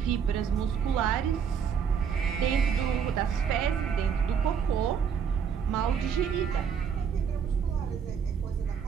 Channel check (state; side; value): quieter; left; 7.2 dB